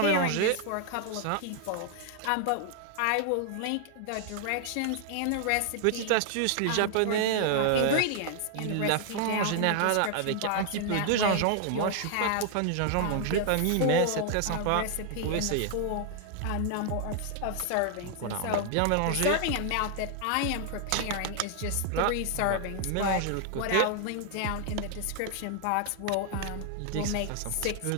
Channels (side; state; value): both; different; correlation 0.00